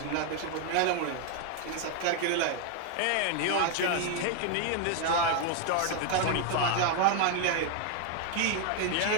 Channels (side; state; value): both; different; correlation 0.01